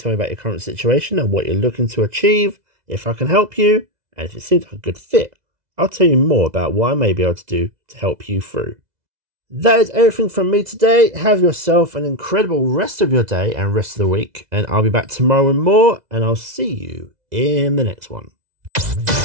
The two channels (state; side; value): late; left; 2.0 ms